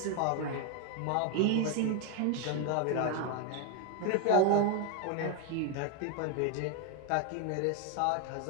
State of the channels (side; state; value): both; different; correlation 0.01